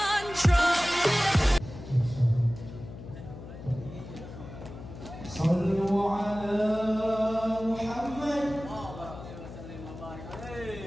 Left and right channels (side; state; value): left; noise; hum, 13 dB below the sound